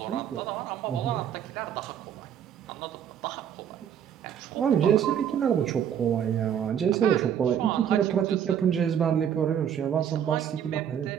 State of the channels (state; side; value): quieter; left; 9.0 dB